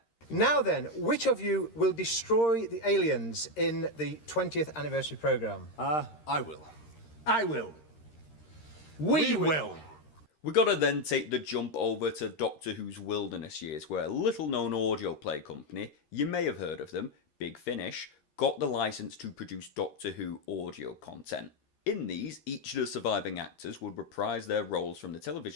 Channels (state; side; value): late; right; 13 ms